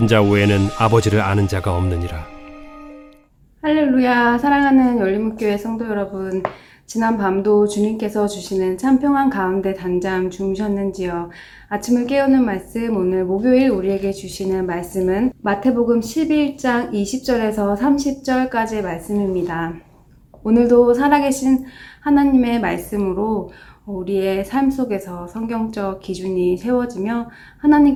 자 외에는 아버지를 아는 자가 없느니라. 할렐루야. 사랑하는 열린문교회 성도 여러분, 지난 밤도 주님께서 주시는 참 평안 가운데 단잠 주무셨는지요? 아침을 깨우는 말씀, 오늘 목요일 우리에게 주시는 말씀은 마태복음 11장 20절에서 30절까지의 말씀입니다. 오늘도 살아계신 하나님의 말씀으로 우리의 삶 속에서 성경적 기준이 세워지며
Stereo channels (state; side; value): identical; both; correlation 1.00